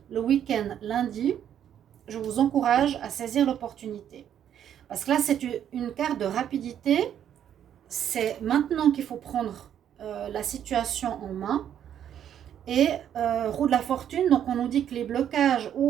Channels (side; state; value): left; quieter; 9.8 dB